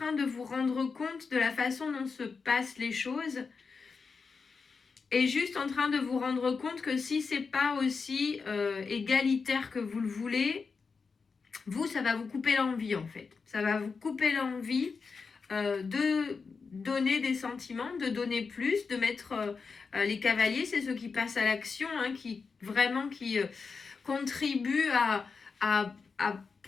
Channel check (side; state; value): right; quieter; 5.0 dB